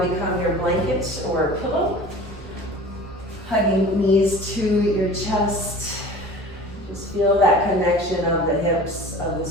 your blanket or pillow. Hugging knees to your chest. Just feel that connection of the hips, of the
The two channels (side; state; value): both; normal; correlation 0.41